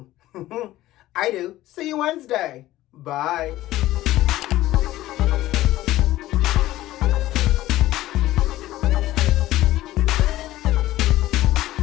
I do. See you Wednesday. Bye.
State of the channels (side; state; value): right; quieter; 15.6 dB